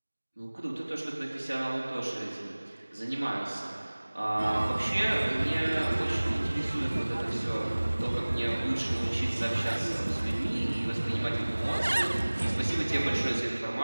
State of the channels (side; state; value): both; inverted; correlation -1.00